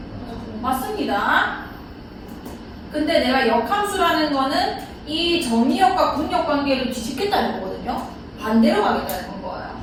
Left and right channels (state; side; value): identical; both; correlation 1.00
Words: 맞습니다. 근데 내가 역함수라는 거는 이 정의역과 공역 관계를 뒤집겠다는 거거든요. 반대로 가겠다는 거예요.